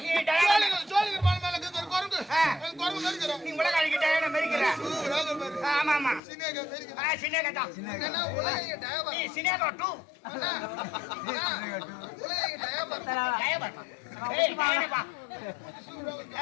நீ உலக அழிக்கிட்ட மேய்க்கிற ஆமா ஆமா சின்னேகா தான் நீ சின்னேகா டூ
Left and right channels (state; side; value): drops out; right; at 6.2 s